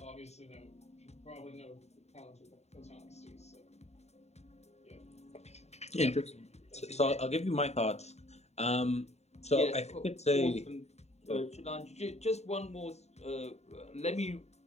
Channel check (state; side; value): late; right; 0.32 ms